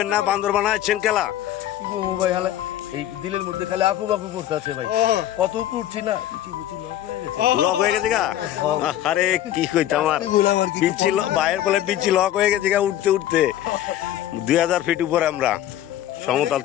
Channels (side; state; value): right; quieter; 12.6 dB